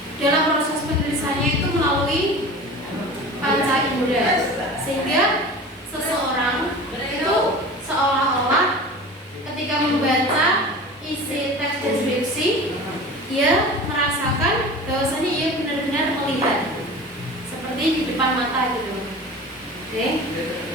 dalam proses penulisannya itu melalui panca indera, sehingga seseorang itu seolah-olah ketika membaca isi teks deskripsi dia merasakan bahwasanya ia benar-benar melihat seperti di depan mata gitu. Oke.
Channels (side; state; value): both; normal; correlation 0.37